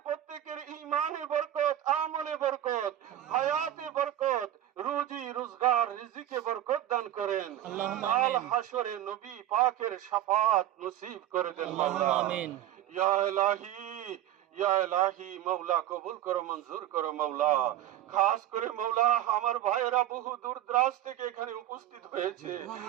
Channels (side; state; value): left; quieter; 12.7 dB